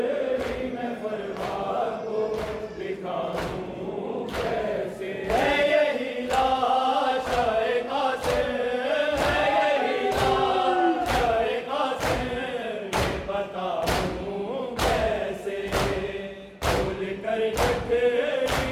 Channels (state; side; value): identical; both; correlation 1.00